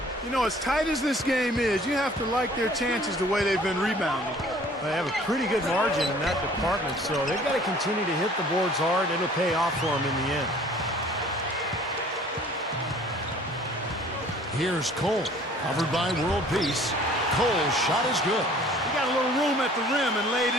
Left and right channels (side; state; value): both; normal; correlation 0.52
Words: You know, as tight as this game is, you have to like their chances the way they've been rebounding. They have a pretty good margin in that department, so they've got to continue to hit the boards hard. It'll pay off for them in the end. Here's Cole, covered by world peace. Cole's shot is good. He got a little room at the rim and laid